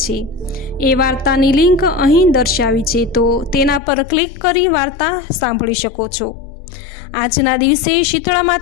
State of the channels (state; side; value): drops out; right; at 3.8 s